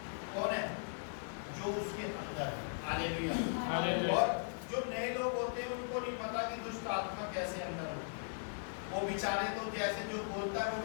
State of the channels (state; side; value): silent; right; digital silence